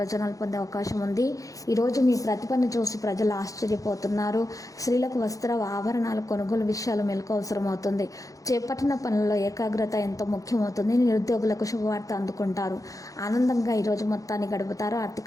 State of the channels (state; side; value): late; right; 0.16 ms